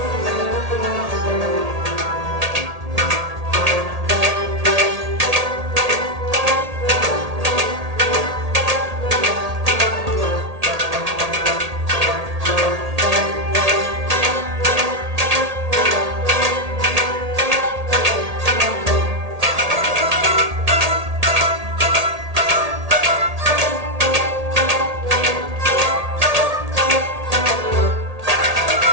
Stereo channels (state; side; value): late; left; 1.8 ms